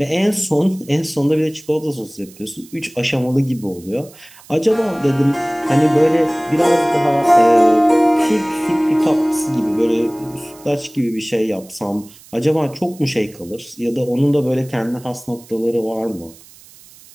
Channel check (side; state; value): right; noise; hiss, 23 dB below the sound